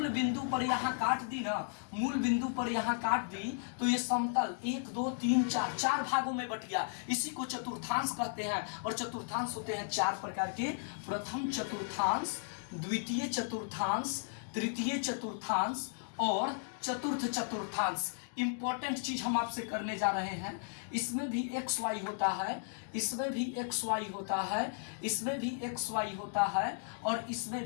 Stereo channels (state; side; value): silent; right; digital silence